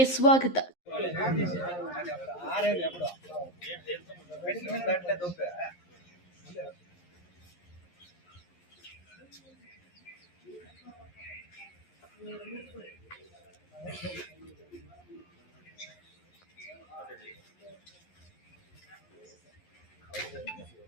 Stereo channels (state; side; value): late; right; 11 ms